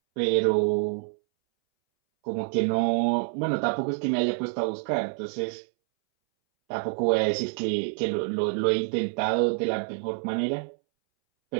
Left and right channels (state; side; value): silent; left; 60 dB below the other